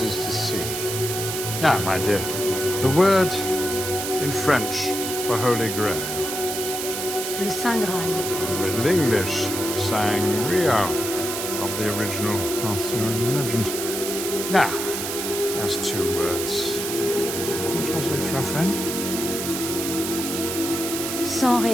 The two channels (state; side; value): noise; right; hiss, 4 dB below the sound